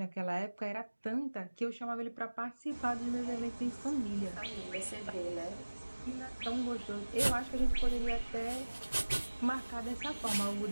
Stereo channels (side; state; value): both; inverted; correlation -1.00